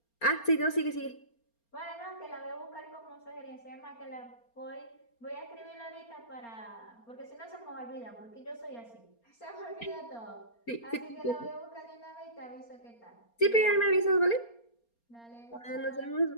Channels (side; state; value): right; late; 4.3 ms